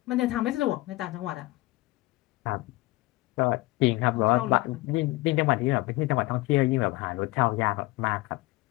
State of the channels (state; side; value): quieter; right; 20.4 dB